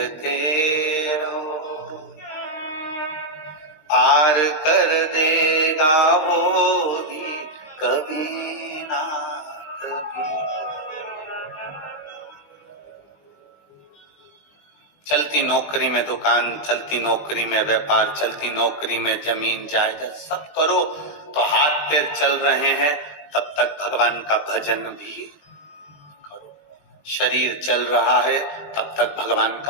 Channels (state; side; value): late; right; 20 ms